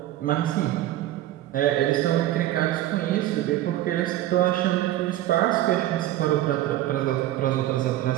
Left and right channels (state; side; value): quieter; left; 14.1 dB